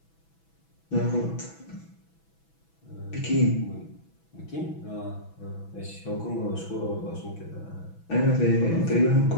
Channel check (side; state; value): right; late; 6.1 ms